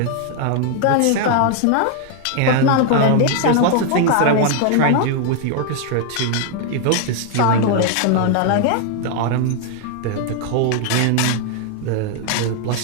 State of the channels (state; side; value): different; both; correlation 0.00